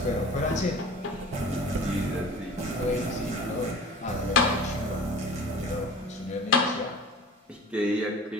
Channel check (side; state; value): both; normal; correlation 0.41